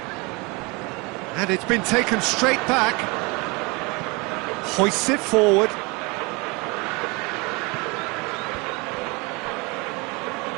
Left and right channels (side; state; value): left; quieter; 27.3 dB